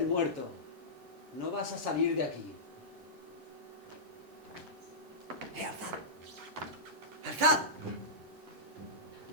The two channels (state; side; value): late; left; 10 ms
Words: muerto, no vas a salir de aquí. ¡Alzad! ¡Alzad!